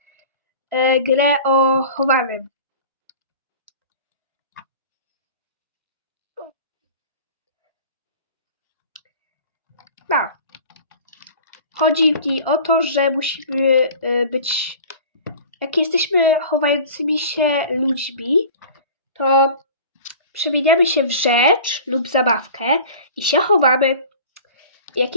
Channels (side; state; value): both; inverted; correlation -0.41